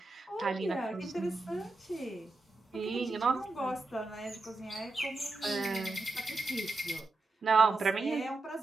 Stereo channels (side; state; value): left; quieter; 3.3 dB